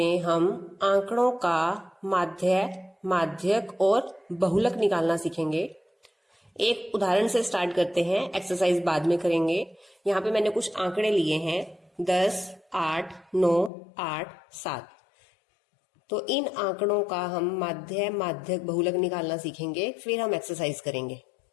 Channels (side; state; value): right; drops out; at 13.7 s